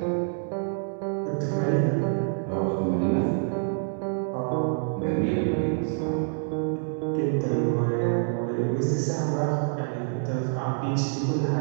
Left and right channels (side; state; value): left; silent; 60 dB below the other